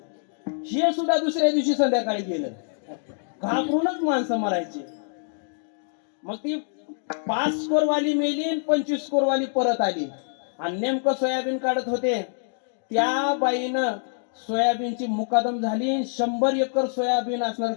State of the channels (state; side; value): silent; right; digital silence